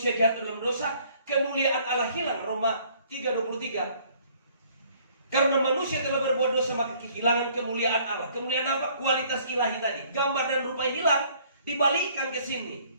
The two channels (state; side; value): inverted; both; correlation -0.60